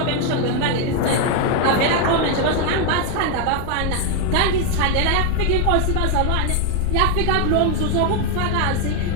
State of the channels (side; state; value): both; different; correlation 0.01